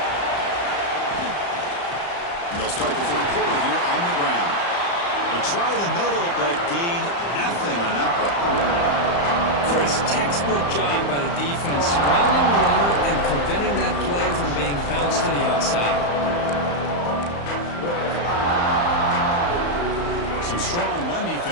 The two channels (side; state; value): right; late; 35 ms